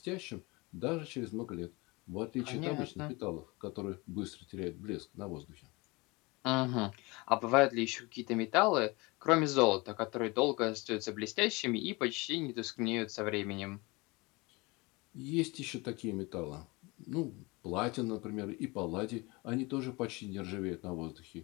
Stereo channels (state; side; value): quieter; right; 25.0 dB